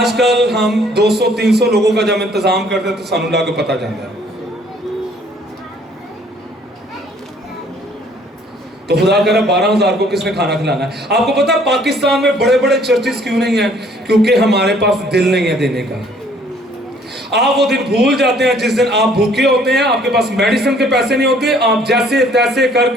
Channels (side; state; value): both; normal; correlation 0.60